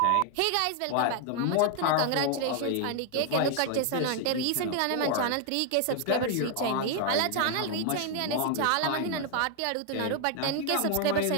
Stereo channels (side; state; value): both; different; correlation 0.00